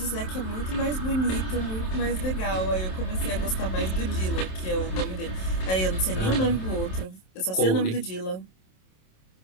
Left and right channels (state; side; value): late; right; 27 ms